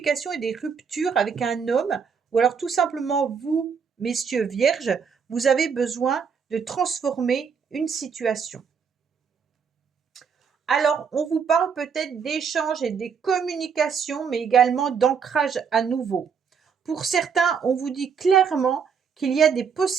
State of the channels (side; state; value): left; quieter; 6.4 dB